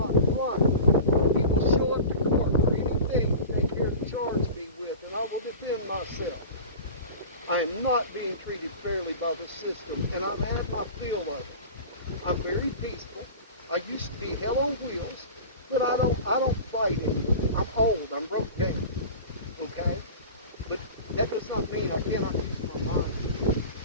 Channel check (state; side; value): inverted; both; correlation -0.35